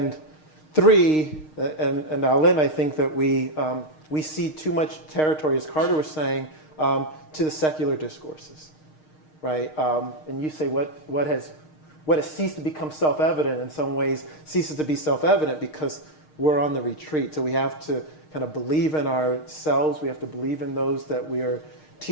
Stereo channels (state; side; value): late; right; 6.5 ms